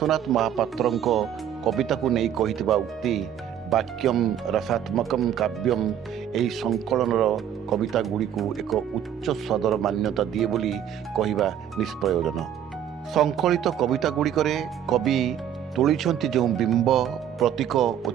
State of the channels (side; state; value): left; quieter; 9.9 dB